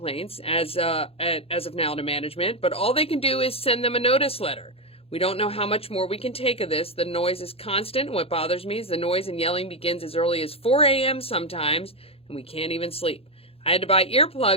as of now to management, but all they can do is send them a notice letter. We don't know how much more we can take of this. The noise is constant, and what bothers me is the noise and yelling begins as early as 4 a.m. sometimes, and we can't even sleep. I had to buy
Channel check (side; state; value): right; late; 0.28 ms